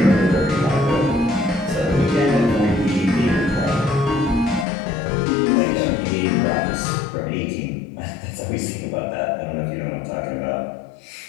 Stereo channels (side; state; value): right; drops out; at 4.7 s